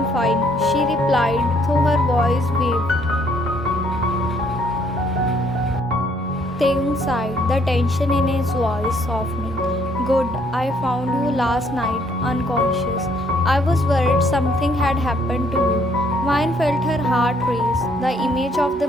fine, she replied, though her voice wavered. Taehyung sighed, the tension in his voice softening. Good, I found you last night, unconscious. I was worried something had happened to you. Vine felt her heart race, the image of the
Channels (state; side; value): normal; both; correlation 0.66